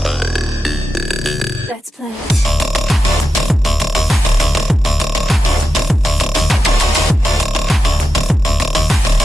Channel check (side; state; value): both; normal; correlation 0.90